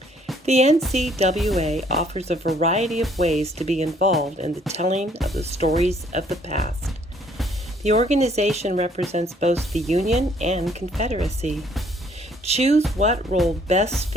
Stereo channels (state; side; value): normal; both; correlation 0.63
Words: The NCWA offers a variety of ways to be involved in the telling of the stories of the past. The organization represents both the Union and Confederacy. Choose what role best